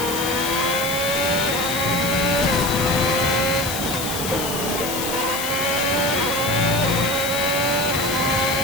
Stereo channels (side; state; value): left; noise; hiss, 5 dB below the sound